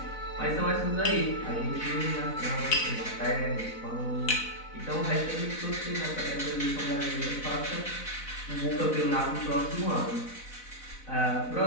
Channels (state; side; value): late; right; 4.0 ms